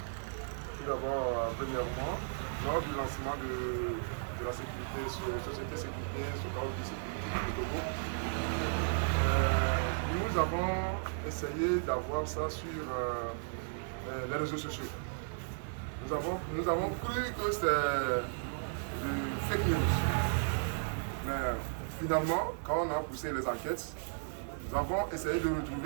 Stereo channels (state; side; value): silent; left; digital silence